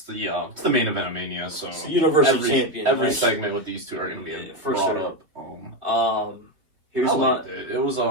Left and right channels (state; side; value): late; left; 3.1 ms